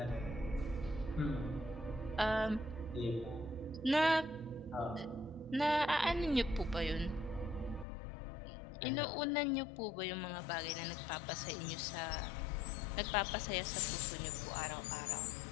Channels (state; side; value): drops out; right; at 7.9 s